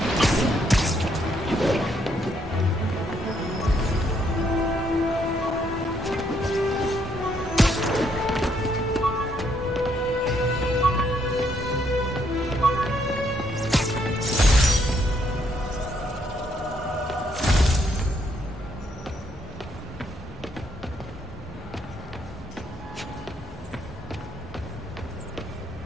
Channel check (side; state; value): both; normal; correlation 0.72